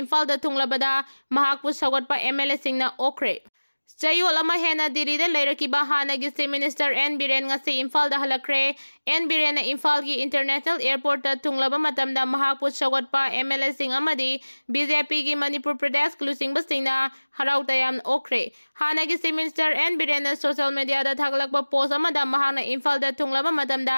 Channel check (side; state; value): both; inverted; correlation -1.00